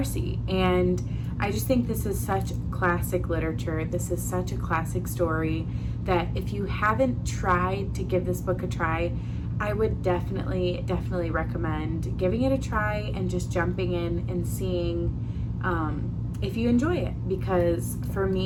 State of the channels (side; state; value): both; identical; correlation 1.00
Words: And I just think this is such classic literature. This is such a classic story that if you haven't tried to give this book a try, I would definitely recommend giving it a try and just jumping in and seeing if you enjoy it, because for